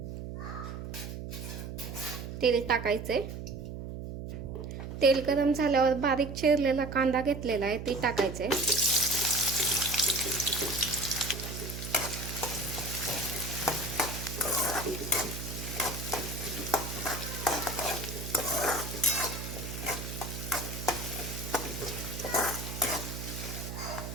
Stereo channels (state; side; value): noise; right; hum, 7 dB below the sound